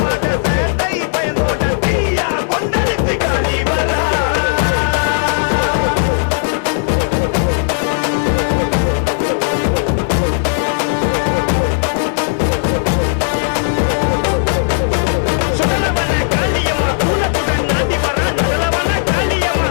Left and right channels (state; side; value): silent; right; digital silence